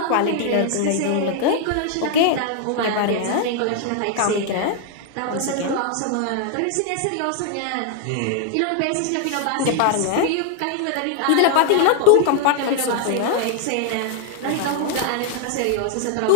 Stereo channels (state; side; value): different; both; correlation 0.00